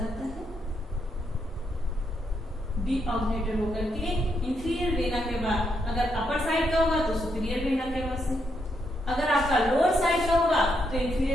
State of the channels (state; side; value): normal; both; correlation 0.78